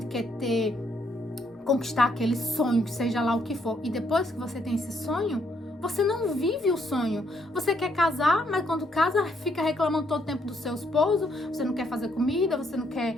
quer conquistar aquele sonho, que seja lá o que for. E depois que você tem esse sonho, você não vive o sonho. Você quer casar, mas quando casa, fica reclamando todo o tempo do seu esposo. Você não quer fazer comida, você não quer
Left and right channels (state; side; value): normal; both; correlation 0.72